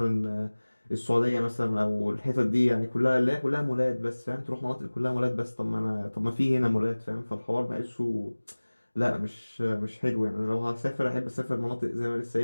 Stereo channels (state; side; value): inverted; both; correlation -1.00